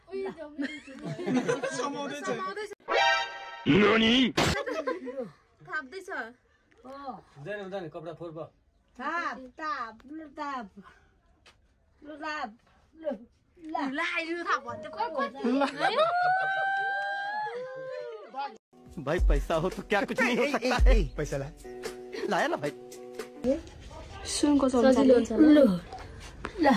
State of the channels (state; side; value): identical; both; correlation 1.00